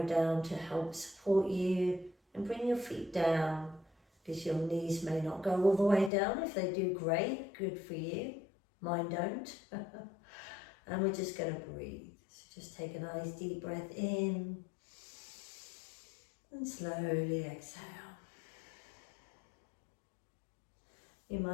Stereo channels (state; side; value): drops out; right; at 6.1 s